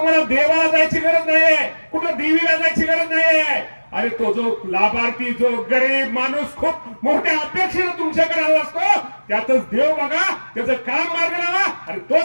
देवाला जायची गरज नाहीये, कुठं देवीला जायची गरज नाहीये. अरे तो जो लाभार्थी, जो गरीब माणूस खूप मोठ्या अपेक्षेने तुमच्याकडे आला असतो, त्यातच देव बघा, त्याचं काम मार्ग लावा, आणि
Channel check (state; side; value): inverted; both; correlation -1.00